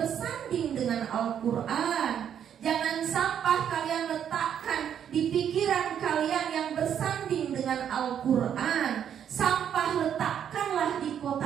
dengan Al-Quran. Jangan sampah kalian letakkan di pikiran kalian yang bersanding dengan Al-Quran. Sampah letakkanlah di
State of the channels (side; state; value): left; quieter; 9.0 dB